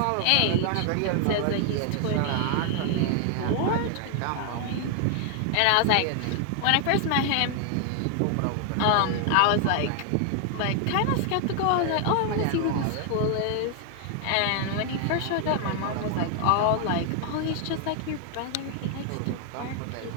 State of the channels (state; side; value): different; both; correlation 0.00